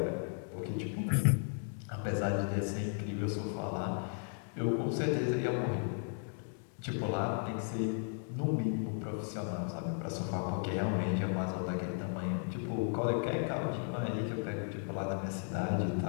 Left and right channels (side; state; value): right; silent; 54 dB below the other